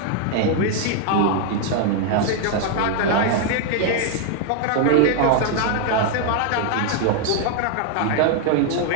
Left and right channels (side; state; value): both; different; correlation 0.00